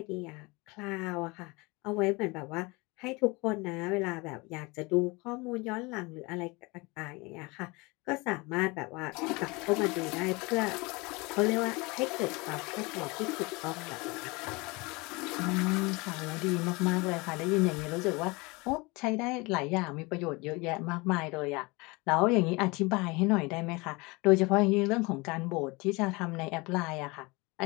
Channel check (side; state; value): right; quieter; 25.5 dB